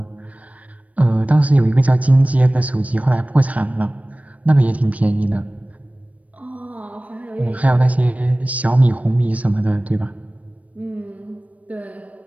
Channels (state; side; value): late; left; 0.067 ms